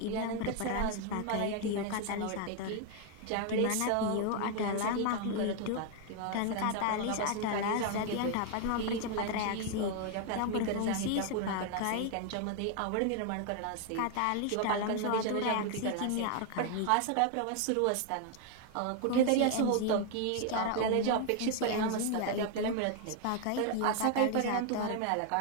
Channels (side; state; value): both; different; correlation 0.01